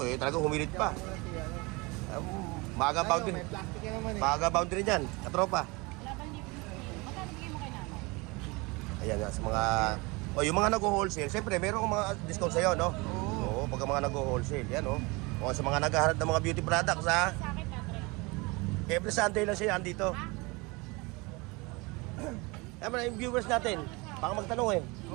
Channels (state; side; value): quieter; left; 25.8 dB